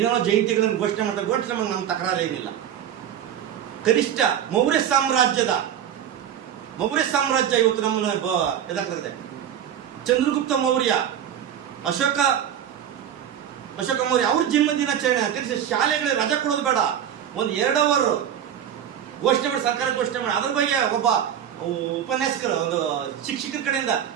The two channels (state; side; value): quieter; left; 9.6 dB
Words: ಜಯಂತಿಗಳನ್ನು ಘೋಷಣೆ ಮಾಡ್ತಾರೆ, ಘೋಷಣೆ ಮಾಡಿ ನಮ್ಮ ತಕರಾರು ಏನಿಲ್ಲ. ಕನಿಷ್ಠ ಮೌರ್ಯ ಸಾಮ್ರಾಜ್ಯ ಇವತ್ತು ನಮ್ಮನ್ನು ಎದಾಗ್ತದೆ. ಚಂದ್ರಗುಪ್ತ ಮೌರ್ಯ, ಅಶೋಕ ಮೌರ್ಯ ಅವ್ರ ಜನ್ಮ ದಿನಾಚರಣೆ ಕನಿಷ್ಠ ಶಾಲೆಗಳಿಗೆ ರಜೆ ಕೊಡೋದು ಬೇಡ, ಒಂದು 2 ಅವರ್ ಘೋಷಣೆ ಮಾಡಿ, ಸರ್ಕಾರ ಘೋಷಣೆ ಮಾಡಿ ಅದ್ರ ಬಗ್ಗೆ ಒಬ್ಬ ಉಪನ್ಯಾಸಕರು, ಒಂದು ಶಿಕ್ಷಕರ ಕಡೆಯಿಂದ